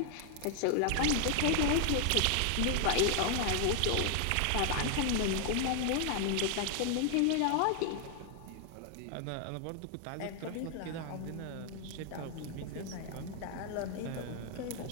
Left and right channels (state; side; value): different; both; correlation 0.00